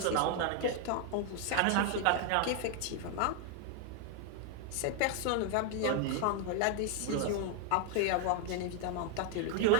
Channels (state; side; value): different; both; correlation 0.00